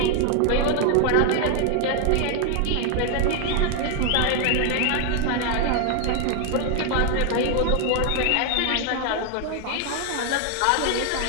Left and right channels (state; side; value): different; both; correlation 0.01